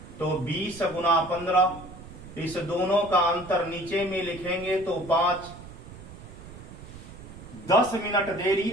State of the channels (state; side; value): noise; right; rumble, 15 dB below the sound